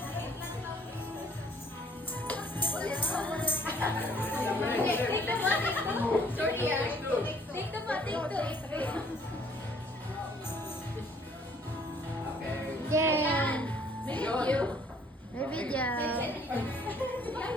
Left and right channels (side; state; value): both; normal; correlation 0.59